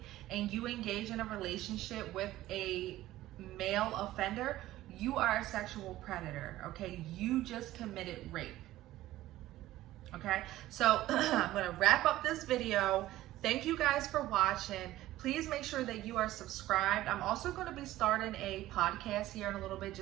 and you engage in a relationship with a male offender, you are a sexual predator, okay? You just committed rape, okay? So I'm gonna wrap up this video. Thank you guys for watching. Please make sure that you are subscribed. I'm also gonna be starting a podcast here in a little bit,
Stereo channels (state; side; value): quieter; left; 15.4 dB